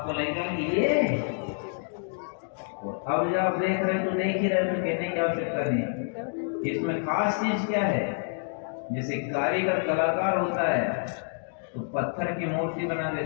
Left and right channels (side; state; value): right; silent; digital silence